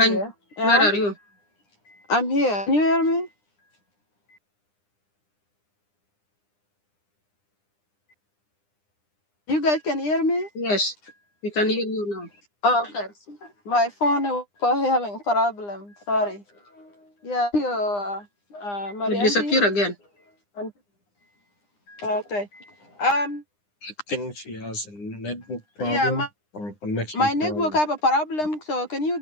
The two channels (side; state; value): right; late; 9.8 ms